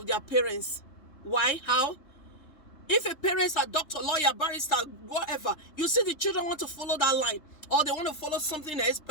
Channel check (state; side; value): late; right; 3.3 ms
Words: their parents. Why? How? If a parent's a doctor, lawyer, barrister, whatever, you see the children want to follow that line, or they want to follow something else,